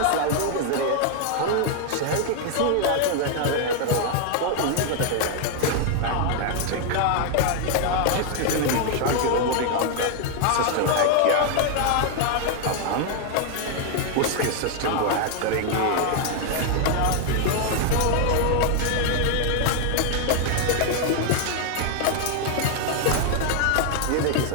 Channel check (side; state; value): both; different; correlation 0.00